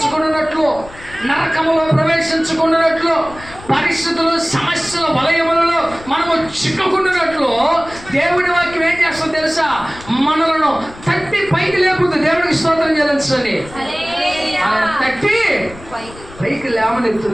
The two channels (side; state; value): left; noise; rumble, 19 dB below the sound